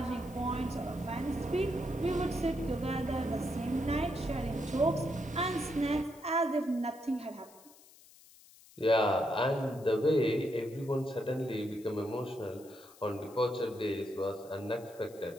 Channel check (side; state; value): left; noise; hiss, 23 dB below the sound